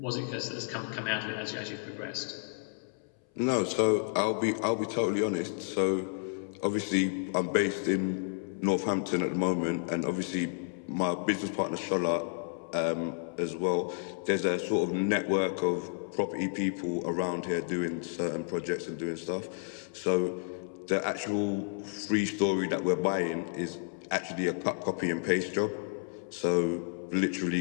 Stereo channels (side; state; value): right; silent; 57 dB below the other